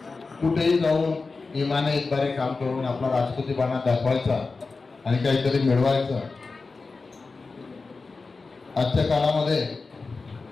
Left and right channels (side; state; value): right; quieter; 4.1 dB